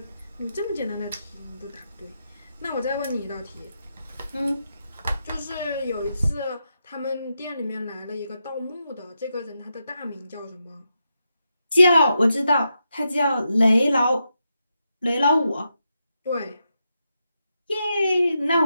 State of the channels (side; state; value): both; inverted; correlation -0.85